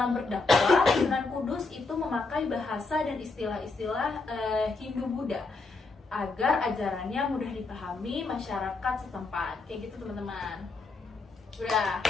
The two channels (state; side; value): quieter; right; 3.8 dB